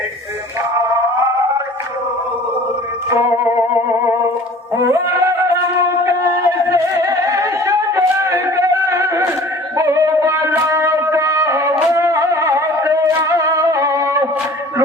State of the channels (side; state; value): both; normal; correlation 0.46